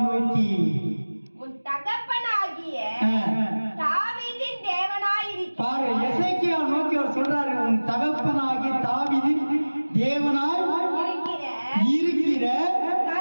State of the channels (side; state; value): both; inverted; correlation -1.00